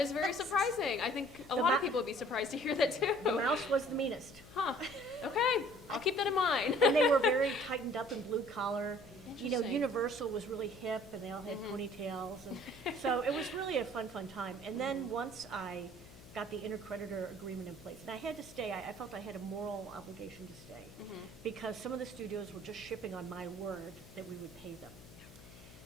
very surprising. I think a The lot of ma- people would be surprised to hear that too. The mouse was the meanest. Huh. Okay. I'll keep that in mind. And they were very tightened up and blue collar. You know, Interesting. Universal was really hip and they all had Mhm. ponytails. And so it was really a fun time. And then once I got the intercreditor agreement in place, and I had to stay, I felt I had a moral obligation to stay Mhm. because some of the studios were just shipping on my word that we would pay them.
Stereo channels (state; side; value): noise; left; hum, 20 dB below the sound